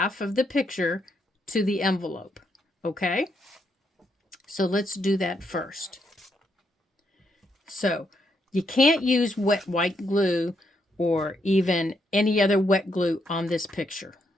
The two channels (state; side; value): normal; both; correlation 0.77